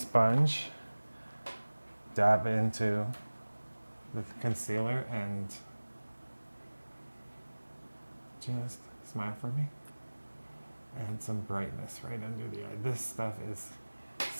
dab into the concealer, and just smile for me. And some brightness right under the eye. This stuff is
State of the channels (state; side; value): inverted; both; correlation -1.00